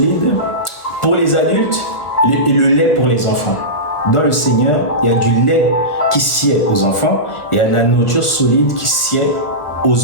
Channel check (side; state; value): right; late; 1.2 ms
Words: pour les adultes et le lait pour les enfants. Dans le Seigneur, il y a du lait qui sied aux enfants et il y a de la nourriture solide qui sied